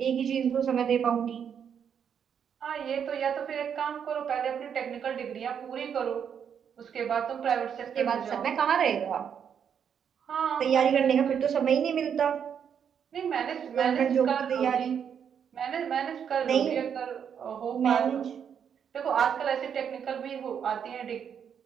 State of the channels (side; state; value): left; quieter; 7.9 dB